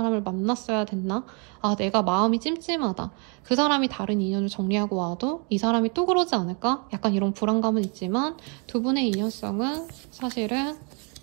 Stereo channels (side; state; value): left; quieter; 35.8 dB